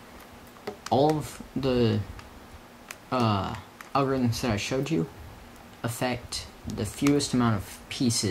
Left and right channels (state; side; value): identical; both; correlation 1.00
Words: all of the algorithms that I showed you affect the fewest amount of